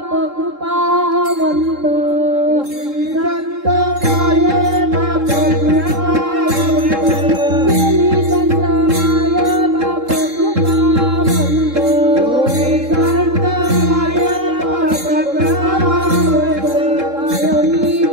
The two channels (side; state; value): left; late; 3.7 ms